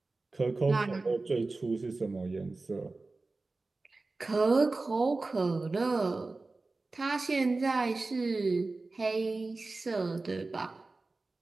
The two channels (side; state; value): left; quieter; 3.5 dB